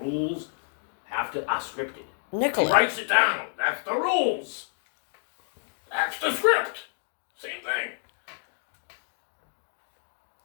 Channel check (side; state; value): right; silent; digital silence